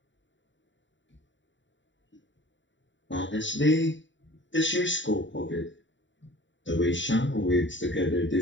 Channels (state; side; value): late; right; 0.54 ms